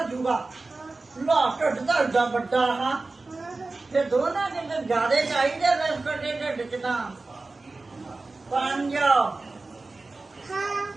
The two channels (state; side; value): quieter; left; 3.5 dB